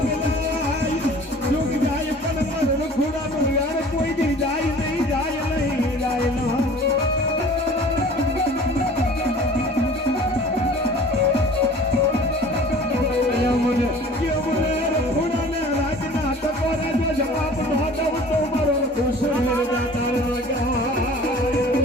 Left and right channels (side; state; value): both; normal; correlation 0.46